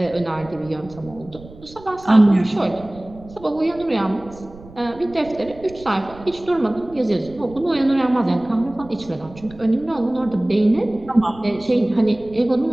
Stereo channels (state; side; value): noise; right; rumble, 20 dB below the sound